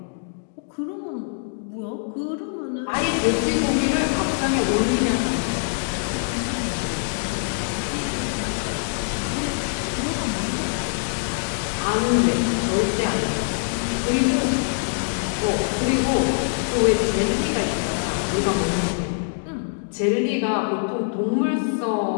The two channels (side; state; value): right; silent; digital silence